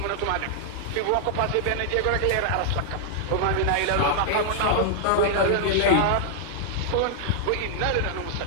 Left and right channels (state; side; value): different; both; correlation -0.01